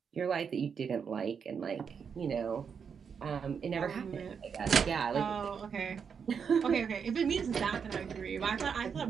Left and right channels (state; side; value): quieter; left; 6.6 dB